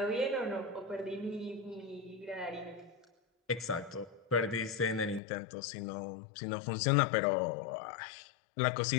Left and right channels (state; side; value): drops out; right; at 5.2 s